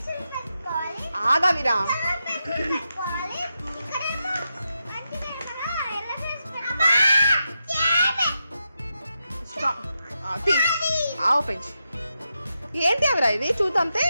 ఆగా వీరా, ఓపెన్ చేయి. ఏంటి అవిరా ఇది చూద్దాంతే.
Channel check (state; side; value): inverted; both; correlation -0.86